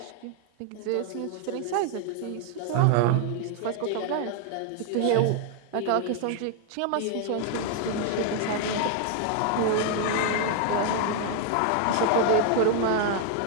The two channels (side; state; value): both; different; correlation 0.00